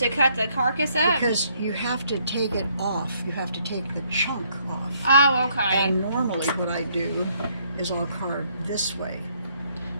cut the carcass up. Because you have to take it off. You have to take the chunk off. Oh, okay. And normally, what I do is I'll carve this way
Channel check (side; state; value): both; inverted; correlation -0.68